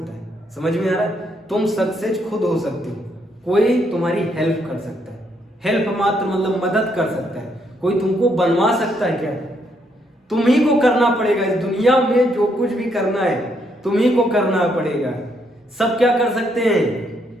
है। समझ में आ रहा है? तुम सक्सेस खुद हो सकते हो, कोई तुम्हारी हेल्प कर सकता है, हेल्प मात्र मतलब मदद कर सकता है, कोई तुमको बनवा सकता है क्या? तुम ही को करना पड़ेगा। इस दुनिया में जो कुछ भी करना है तुम ही को करना पड़ेगा। सब क्या कर सकते हैं?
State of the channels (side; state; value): both; normal; correlation 0.74